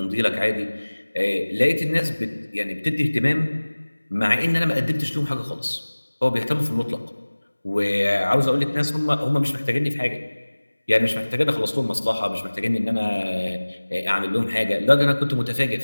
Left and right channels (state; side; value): inverted; both; correlation -1.00